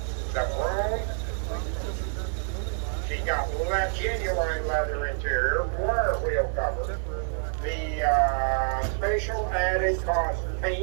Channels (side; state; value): left; silent; digital silence